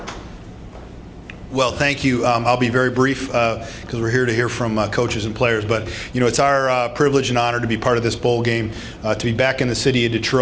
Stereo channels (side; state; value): both; identical; correlation 1.00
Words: Well, thank you. I'll be very brief because we're here to hear from coaches and players. But, it's our privilege and honor to be part of this bowl game, to be back in the city of